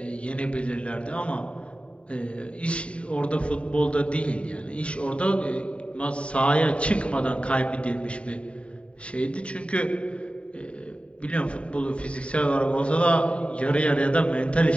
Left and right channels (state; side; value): late; right; 0.061 ms